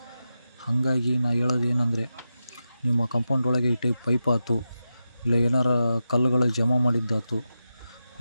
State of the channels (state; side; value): inverted; both; correlation -0.90